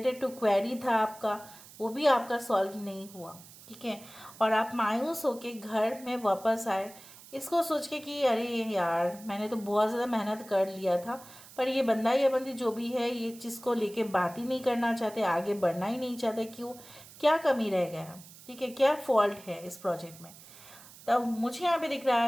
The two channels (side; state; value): right; noise; hiss, 20 dB below the sound